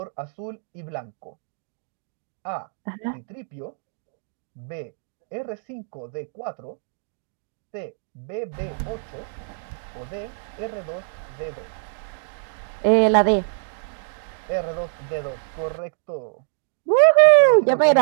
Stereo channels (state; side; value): silent; left; digital silence